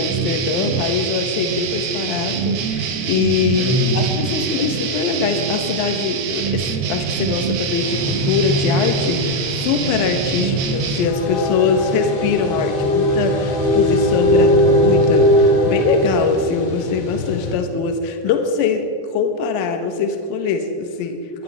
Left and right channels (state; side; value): late; left; 22 ms